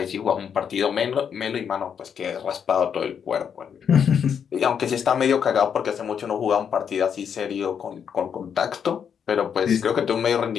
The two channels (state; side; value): quieter; right; 7.6 dB